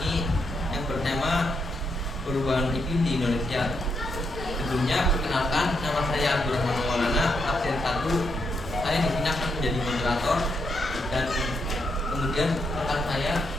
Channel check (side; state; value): both; normal; correlation 0.79